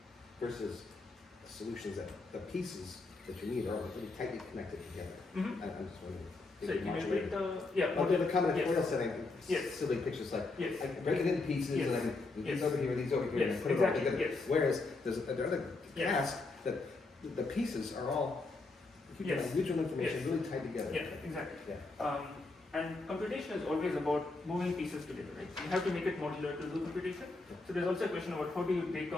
versus solutions that the pieces that you need are really tightly connected together. Mm-hmm. I'm just wondering. So can you break the I'll do the combinatorial yes. setting. Yes. Silly pictures like Yes. I can break it into pieces Yes. and I can do these Yes. over here, these over here, Yes, and put it exactly. all together. Yes. Whereas there's another Yes. task that the pieces are all Yes. mutual information Yes. really tied together. Yeah, exactly. Yeah. And computation is always about moving pieces together, right? You have to make it modular to do computation. So there's also a question about how do you break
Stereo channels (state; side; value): quieter; right; 3.5 dB